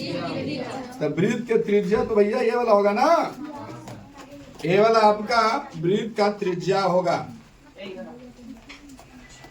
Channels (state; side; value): identical; both; correlation 1.00